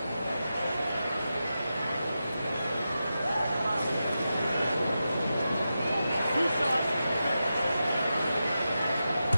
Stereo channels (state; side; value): inverted; both; correlation -0.90